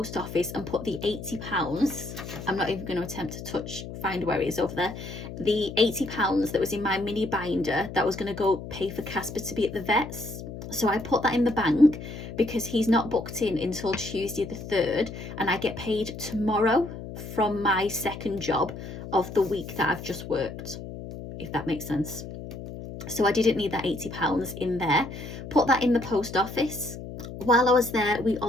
office and put the £80, I'm not even going to attempt to find where it is over there, the £80 that was in my mini binder that was going to go pay for Casper to be at the vet's. So I put that in the bank because he's not booked in until Tuesday the 3rd, and I get paid tomorrow from my second job of the week that I've just worked, if that makes sense. So I didn't need that £80 in there. Put that in the post office. While I was there, I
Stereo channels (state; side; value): noise; left; hum, 10 dB below the sound